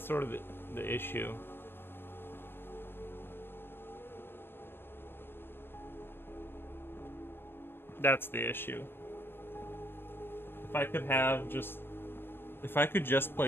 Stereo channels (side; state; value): right; late; 0.10 ms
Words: of the issue. That's the issue. If I could just